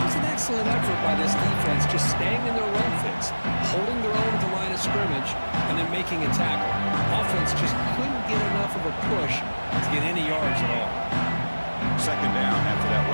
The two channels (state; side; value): inverted; both; correlation -1.00